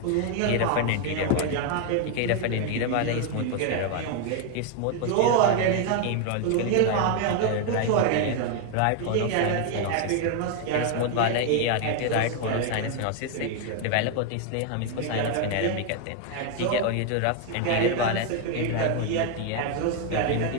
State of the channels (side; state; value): both; different; correlation 0.00